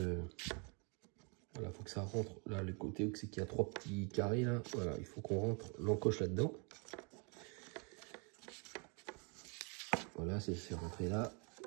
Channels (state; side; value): quieter; left; 34.4 dB